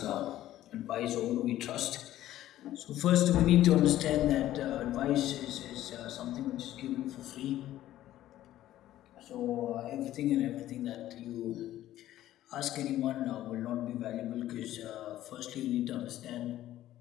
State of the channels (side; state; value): right; quieter; 13.7 dB